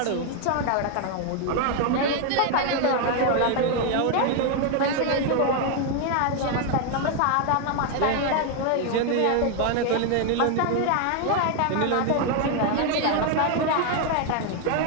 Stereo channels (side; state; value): both; different; correlation 0.01